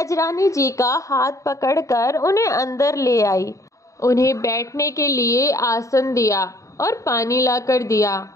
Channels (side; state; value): right; late; 0.16 ms